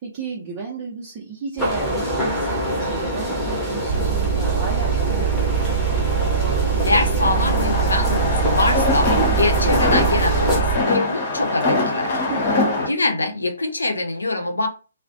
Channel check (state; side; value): inverted; both; correlation -0.37